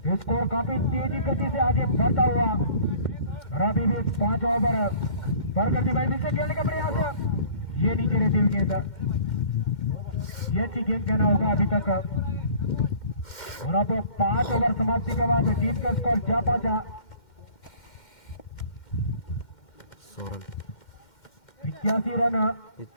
स्कोर काफी तेजी गति से आगे बढ़ता हुआ और अभी भी 5 ओवर पर करती भाई से खेलने का प्रयास ये नीचे रहती हुई गेंद ये अच्छी गेंद कहना होगा अभी तक। और अब 5 ओवर समाप्ति के बाद टीम का स्कोर जा पहुंचा 81 रन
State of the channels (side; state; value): right; late; 2.1 ms